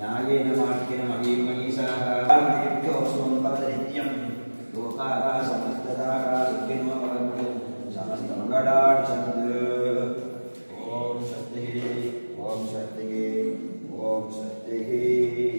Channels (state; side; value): inverted; both; correlation -1.00